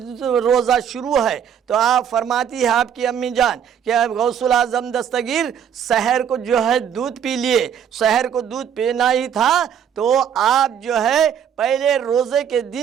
روزہ شروع ہے، تو آپ فرماتی ہے آپ کی امی جان کہ غوث الاعظم دستگیر سحر کو جو ہے دودھ پی لیے، سحر کو دودھ پینا ہی تھا، تو آپ جو ہے پہلے روزے کے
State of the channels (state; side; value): quieter; left; 8.5 dB